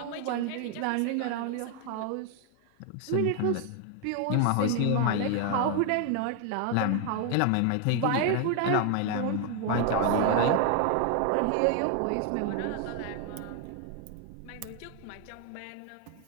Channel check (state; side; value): different; both; correlation 0.00